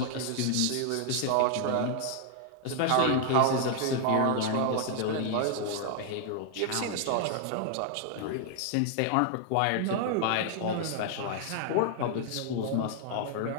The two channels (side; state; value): both; different; correlation -0.01